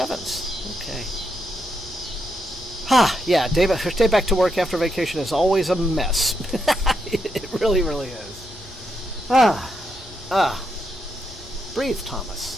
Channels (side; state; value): both; normal; correlation 0.81